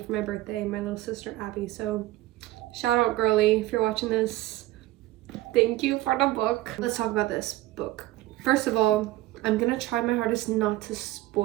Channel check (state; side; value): quieter; left; 17.0 dB